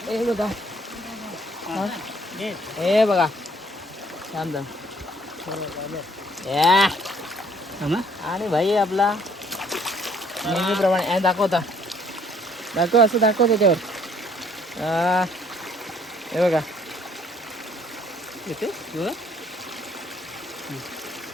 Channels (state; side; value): normal; both; correlation 0.61